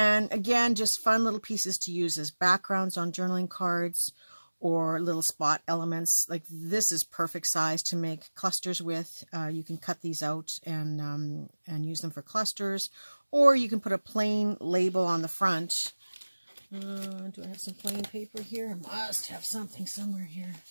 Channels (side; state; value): both; inverted; correlation -1.00